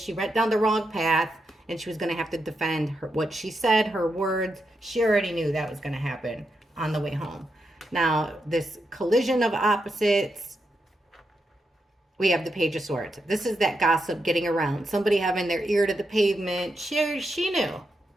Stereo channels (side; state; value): both; normal; correlation 0.84